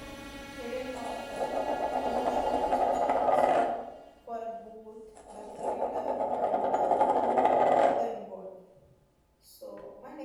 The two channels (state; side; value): identical; both; correlation 1.00